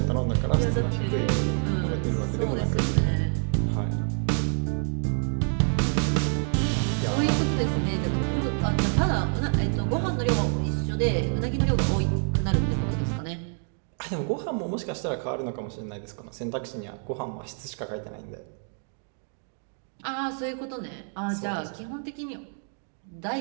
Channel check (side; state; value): left; silent; 57 dB below the other